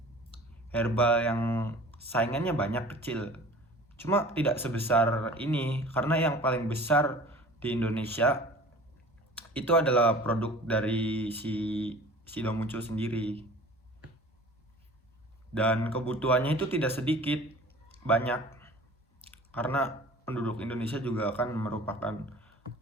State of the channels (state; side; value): normal; both; correlation 0.44